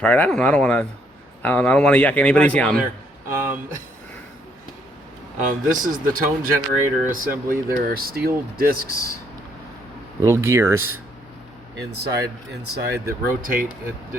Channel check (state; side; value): normal; both; correlation 0.69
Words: I don't know. I don't want to yuck anybody's yum. This is the tone generator assembly. There are steel discs, little gears inside that rotate